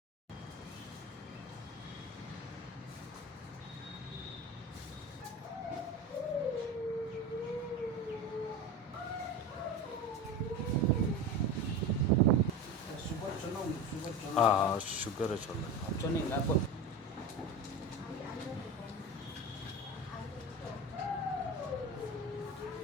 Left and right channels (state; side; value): normal; both; correlation 0.27